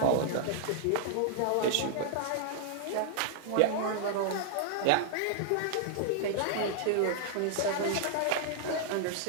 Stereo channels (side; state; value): both; different; correlation -0.01